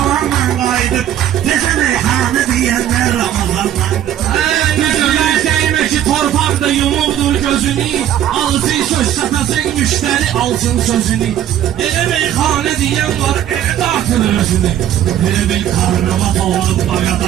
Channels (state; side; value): quieter; left; 11.1 dB